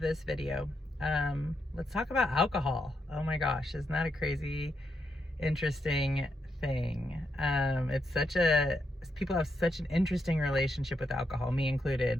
video. Let's talk about alcohol. Oh my gosh, isn't that a crazy, interesting thing? People have such an interesting relationship with alcohol, me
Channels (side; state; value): both; normal; correlation 0.81